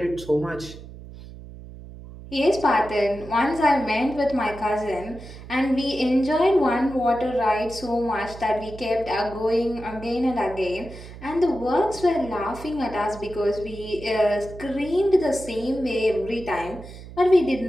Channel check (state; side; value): noise; right; hum, 15 dB below the sound